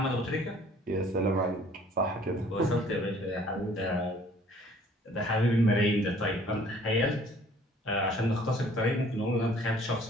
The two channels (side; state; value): both; normal; correlation 0.56